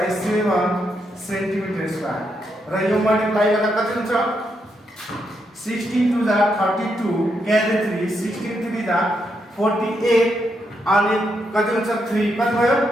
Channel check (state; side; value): normal; both; correlation 0.80